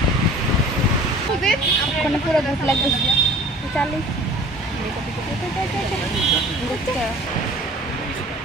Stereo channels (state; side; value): normal; both; correlation 0.46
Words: পুরো ভোট লাগবে চালিয়ে